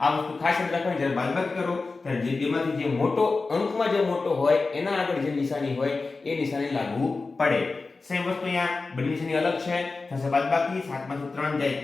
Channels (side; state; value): right; quieter; 3.9 dB